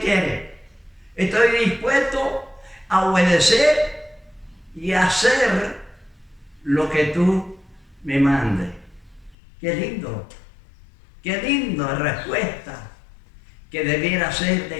Estoy dispuesto a obedecer y a hacer lo que tú me mandes. Qué linda respuesta que debiera ser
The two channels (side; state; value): right; drops out; at 9.3 s